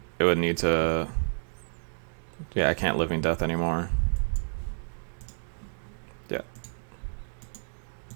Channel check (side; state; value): left; silent; digital silence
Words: It would need to... Yeah, I can't Living Death anymore. Yeah.